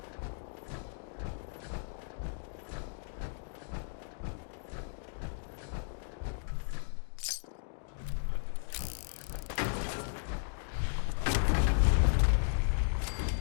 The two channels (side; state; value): right; silent; digital silence